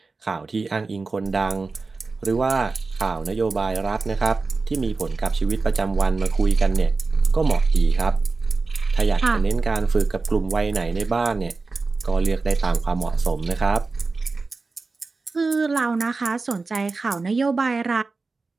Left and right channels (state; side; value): quieter; left; 4.0 dB